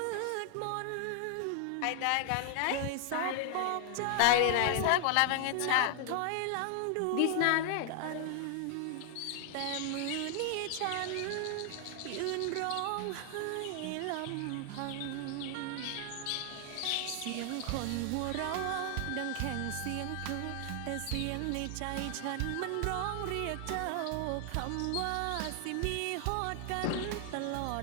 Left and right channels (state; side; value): different; both; correlation 0.00